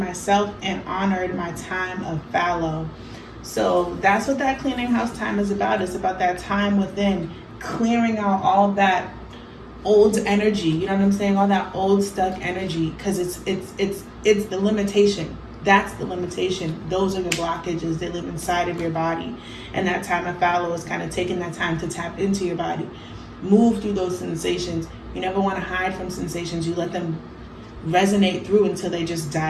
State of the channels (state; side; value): identical; both; correlation 1.00